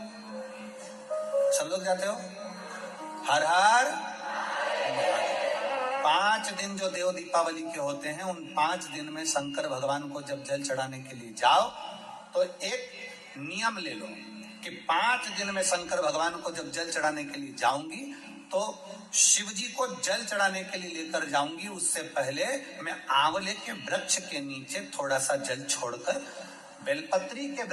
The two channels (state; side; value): identical; both; correlation 1.00